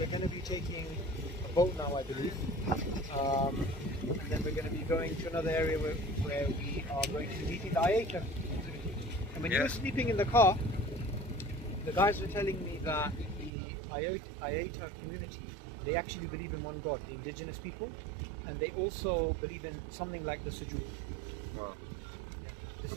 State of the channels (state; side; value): drops out; left; at 13.5 s